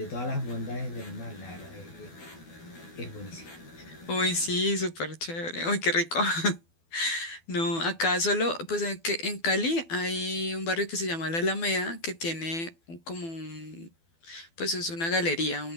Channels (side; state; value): right; late; 12 ms